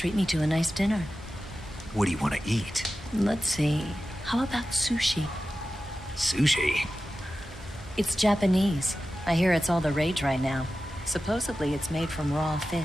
me to a nice dinner. What do you want to eat? Let's see. How about sushi? Sushi? It's Japanese. I hear it's all the rage right now. Supposedly it's made from raw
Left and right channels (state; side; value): normal; both; correlation 0.94